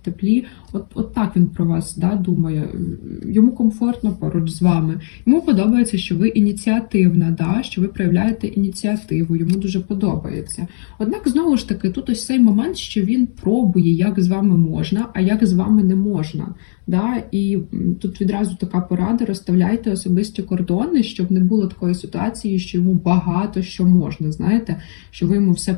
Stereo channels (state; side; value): silent; right; digital silence